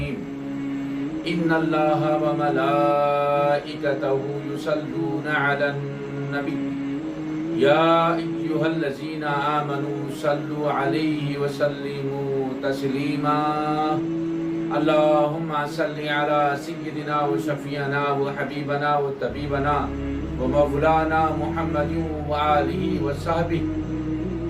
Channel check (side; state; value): both; identical; correlation 1.00